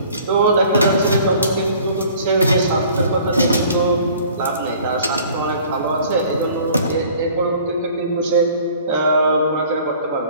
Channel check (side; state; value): both; inverted; correlation -0.51